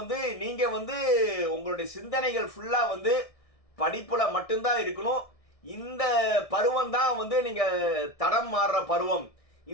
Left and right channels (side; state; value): right; late; 1.6 ms